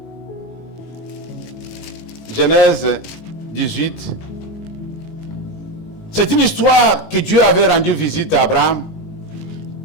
Genèse 18. C'est une histoire que Dieu avait rendu visite à Abraham.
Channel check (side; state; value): right; late; 19 ms